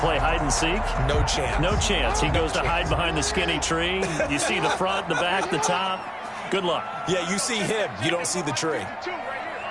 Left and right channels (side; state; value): both; identical; correlation 1.00